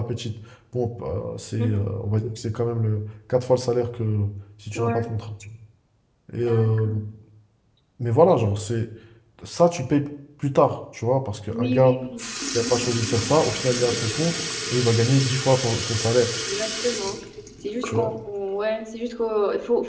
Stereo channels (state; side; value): identical; both; correlation 1.00